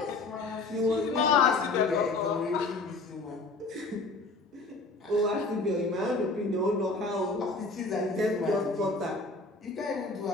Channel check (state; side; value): quieter; right; 3.4 dB